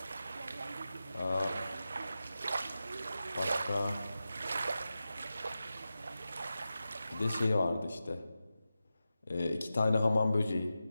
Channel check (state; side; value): inverted; both; correlation -0.93